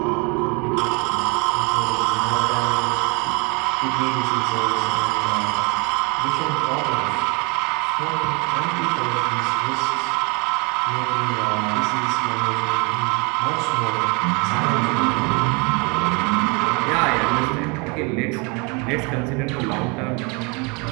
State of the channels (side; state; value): left; quieter; 30.5 dB